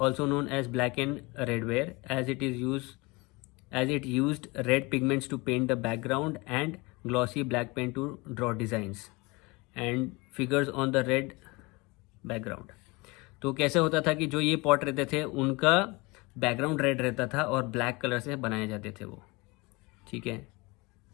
known as black and red ware, as it used red pigments to paint the background and glossy black paint to draw designs and figures on the red background. तो कैसे होता था कि जो ये pot रहते थे उनका बैकग्राउंड रेड रहता था और ब्लैक कलर से बनाए जाते थे वो, ठीक है।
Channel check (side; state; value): right; quieter; 25.2 dB